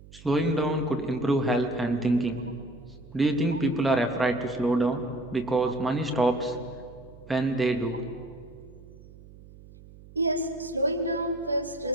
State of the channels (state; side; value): noise; right; hum, 20 dB below the sound